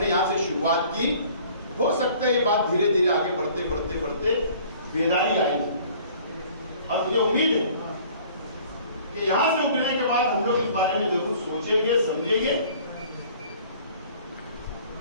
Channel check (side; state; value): both; inverted; correlation -0.52